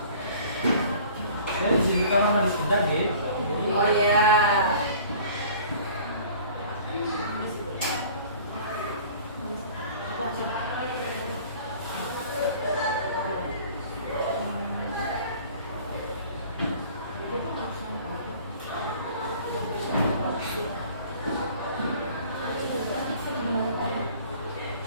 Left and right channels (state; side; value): inverted; both; correlation -0.48